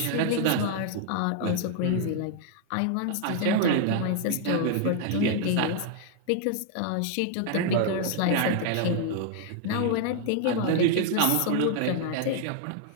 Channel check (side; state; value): both; different; correlation 0.00